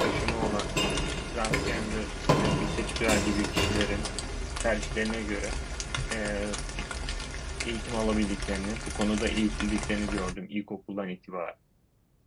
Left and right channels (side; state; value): both; identical; correlation 1.00